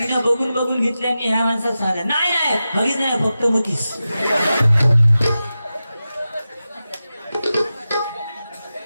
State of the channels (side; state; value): both; inverted; correlation -0.93